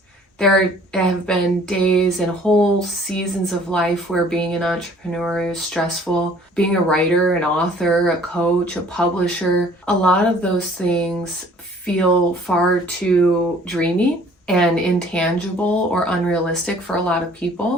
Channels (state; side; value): normal; both; correlation 0.55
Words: there have been days and whole seasons of life where being an entrepreneur is stressful. Being a writer, an author, a coach, a publisher, a lot of those things feel far too dreamy and intangible or unrealistic for a lot of